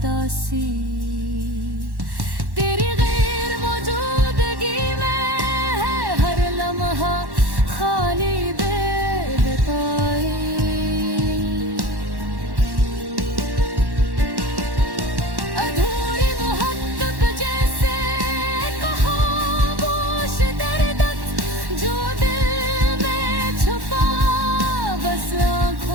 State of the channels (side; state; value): left; late; 1.1 ms